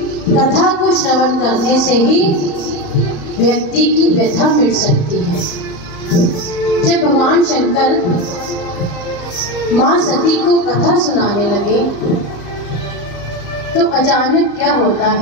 कथा को श्रवण करने से ही व्यक्ति की व्यथा मिट सकती है। जब भगवान शंकर मां सती को कथा सुनाने लगे तो अचानक क्या होता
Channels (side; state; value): right; late; 34 ms